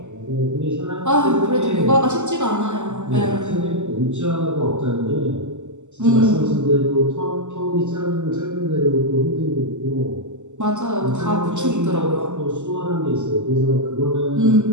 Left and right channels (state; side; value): late; left; 0.84 ms